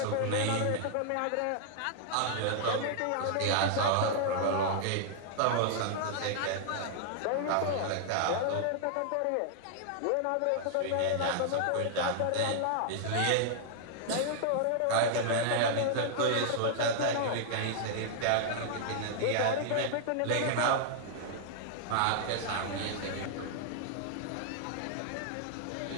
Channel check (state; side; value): different; both; correlation -0.01